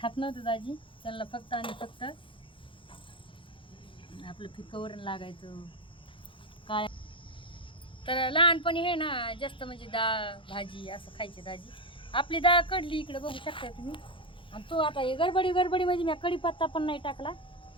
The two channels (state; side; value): late; right; 0.25 ms